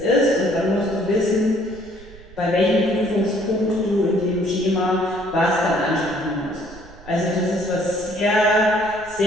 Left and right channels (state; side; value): noise; right; rumble, 20 dB below the sound